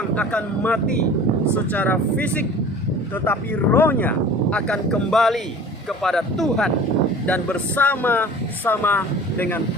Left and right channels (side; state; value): both; normal; correlation 0.42